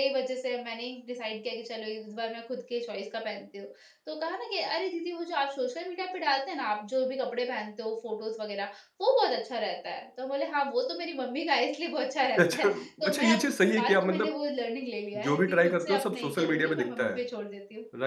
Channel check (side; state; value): both; identical; correlation 1.00